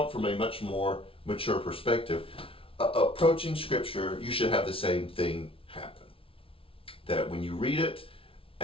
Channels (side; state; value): right; late; 0.26 ms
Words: it from a much more mature perspective. Approaching Scripture, you should have the same thing happen. That when you read it